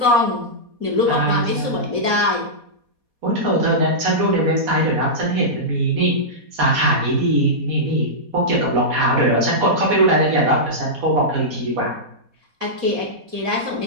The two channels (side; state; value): left; late; 4.2 ms